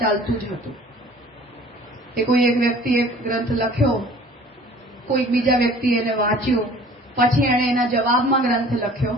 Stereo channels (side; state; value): both; normal; correlation 0.49